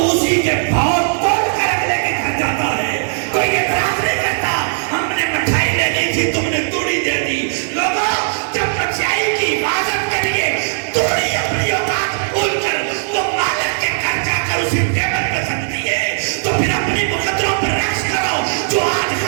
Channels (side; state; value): left; silent; digital silence